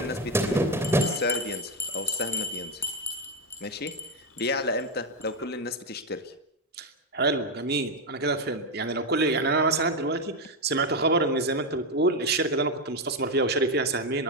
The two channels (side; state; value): both; normal; correlation 0.08